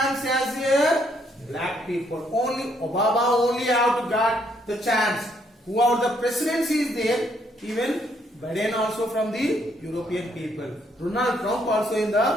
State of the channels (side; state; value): both; normal; correlation 0.70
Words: as a black people. Only Obama only have to got the chance. Whoever the presidency is there, even Biden also from the European people. Donald Trump also in